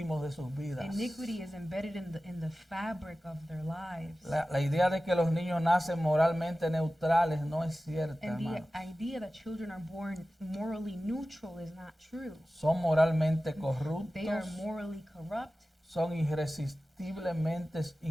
de sus vidas. Iniquity is embedded in the fabric of their lives. La idea de que los niños nacen moralmente neutrales no es cierta, And the hermanos. idea that children are born morally neutral is not true. Son moralmente They are corruptos, morally corrupt, son irresistiblemente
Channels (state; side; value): normal; both; correlation 0.95